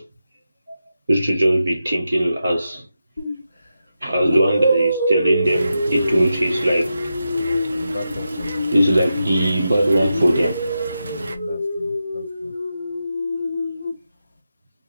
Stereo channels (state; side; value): inverted; both; correlation -0.88